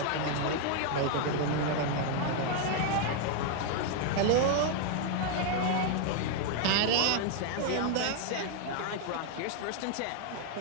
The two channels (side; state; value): both; different; correlation 0.00